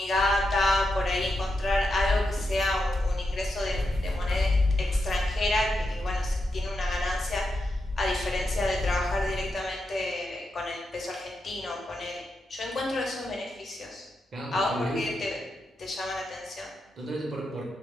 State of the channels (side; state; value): both; normal; correlation 0.86